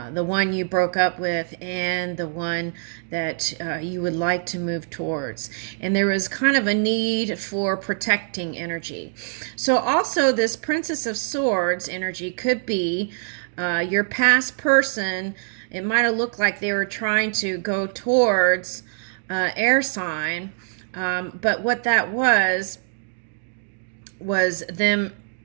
The one you broke up with and the one that you would like to move towards. And there was kind of a need for protecting energy. So also this Princess of Swords energy could be your past person. It might have looked like they were trying to go towards air sign, but what that was them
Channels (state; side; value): silent; left; digital silence